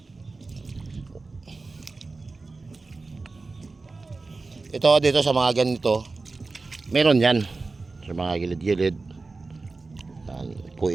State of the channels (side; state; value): left; quieter; 3.8 dB